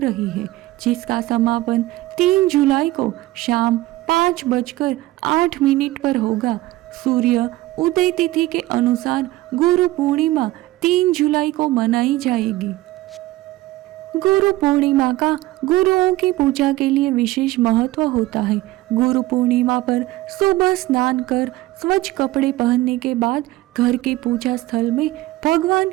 है, जिसका समापन 3 जुलाई को शाम 5:08 पर होगा। सूर्य उदय तिथि के अनुसार गुरु पूर्णिमा 3 जुलाई को मनाई जाएगी। गुरु पूर्णिमा का गुरुओं की पूजा के लिए विशेष महत्व होता है। गुरु पूर्णिमा पर सुबह स्नान कर स्वच्छ कपड़े पहनने के बाद घर के पूजा स्थल में भगवान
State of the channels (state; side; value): quieter; left; 17.5 dB